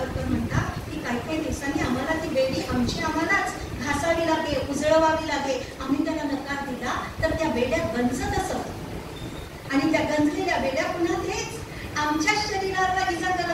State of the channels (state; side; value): identical; both; correlation 1.00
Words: म्हणतात की काही दिवसांनी आम्हाला ती बेडी आम्हालाच घासावी लागेल, उजळवावी लागेल. आम्ही त्याला नकार दिला तर त्या बेड्या गंजत असत आणि त्या गंजलेल्या बेड्या पुन्हा तेच आमच्या शरीराला इजा